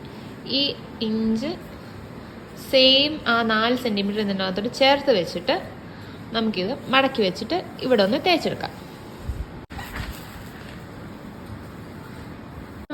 ഈ ഇഞ്ച് സെയിം ആ 4 സെൻറ്റിമീറ്റർ ഇതിനകത്തോട്ട് ചേർത്ത് വെച്ചിട്ട് നമുക്കിത് മടക്കി വെച്ചിട്ട് ഇവിടെ ഒന്ന് തേച്ചെടുക്കാം.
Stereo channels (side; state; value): both; identical; correlation 1.00